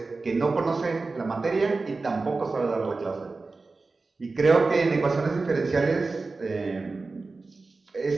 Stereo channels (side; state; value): left; quieter; 3.8 dB